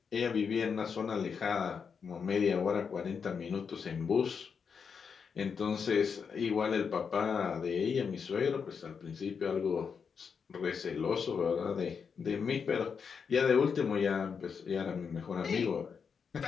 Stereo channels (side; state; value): right; quieter; 6.2 dB